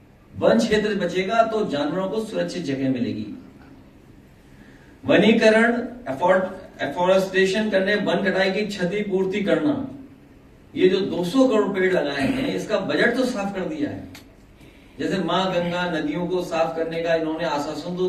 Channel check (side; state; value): both; identical; correlation 1.00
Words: वन क्षेत्र बचेगा तो जानवरों को सुरक्षित जगह मिलेगी। वनीकरण, एफोरेस्टेशन करने, वन कटाई की क्षतिपूर्ति करना, ये जो 200 करोड़ पेड़ लगाए हैं इसका बजट तो साफ कर दिया है। जैसे मां गंगा नदियों को साफ करने का इन्होंने आश्वासन